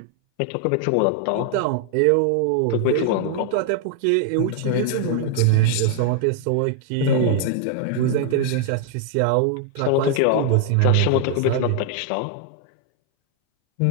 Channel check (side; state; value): both; different; correlation 0.00